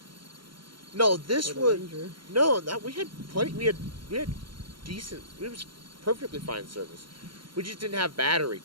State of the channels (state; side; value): late; left; 0.73 ms